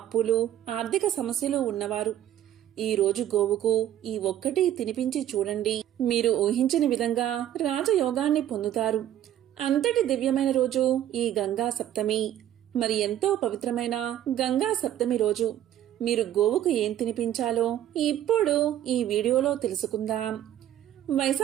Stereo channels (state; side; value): quieter; left; 11.6 dB